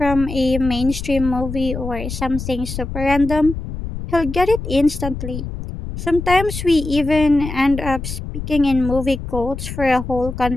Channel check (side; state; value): left; noise; rumble, 7 dB below the sound